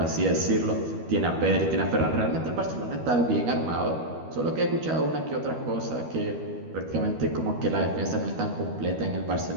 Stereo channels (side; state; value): left; late; 12 ms